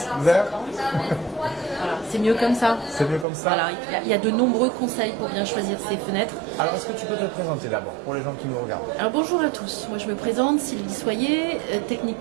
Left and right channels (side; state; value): left; drops out; at 3.2 s